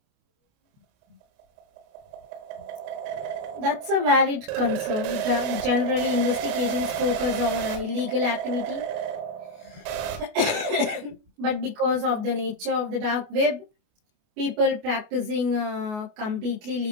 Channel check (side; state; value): left; late; 28 ms